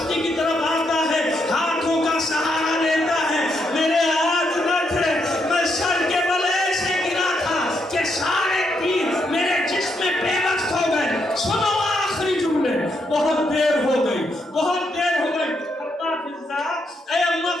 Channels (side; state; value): both; normal; correlation 0.78